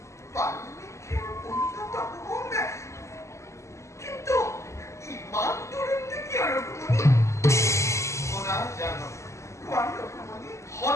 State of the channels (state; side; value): late; right; 0.14 ms